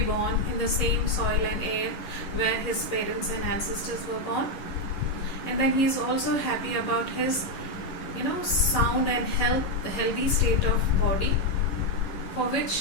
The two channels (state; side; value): late; right; 11 ms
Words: born in the same soil and air where his parents and ancestors were born. And then he is also happy about his sound and health, the healthy state of body, for